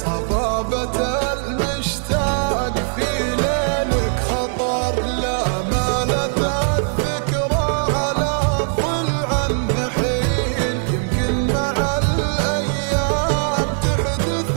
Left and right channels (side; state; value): left; silent; 57 dB below the other